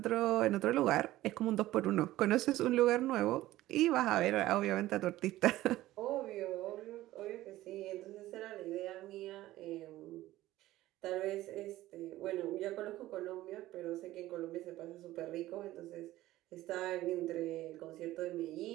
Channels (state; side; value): quieter; left; 15.9 dB